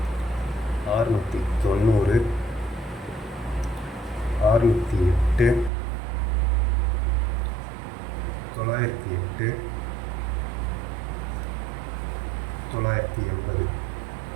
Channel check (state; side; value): drops out; left; at 5.7 s